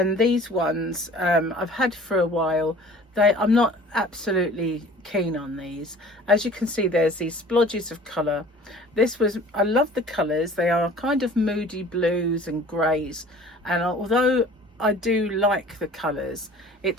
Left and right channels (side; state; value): both; normal; correlation 0.47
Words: these ones I've had for a while. I'm not absolutely keen on these. As you can see, there's these splodges of colour. I love the colours. They are kind of moody blues and greys, and although I do like the colours,